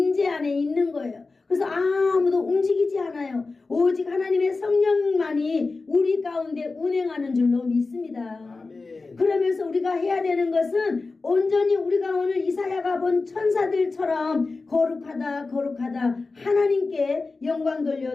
안에 있는 거예요. 그래서 아무도 움직이지 않아요. 오직 하나님의 성령만이 우리 가운데 운행하는 줄로 믿습니다. 아멘. 그러면서 우리가 해야 되는 것은 온전히 우리가 오늘 이사야가 본 천사들처럼 거룩하다 거룩하다 하나님께 영광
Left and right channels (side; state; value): right; quieter; 3.8 dB